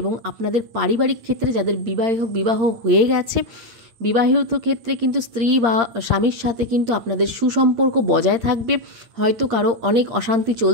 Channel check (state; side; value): late; left; 8.7 ms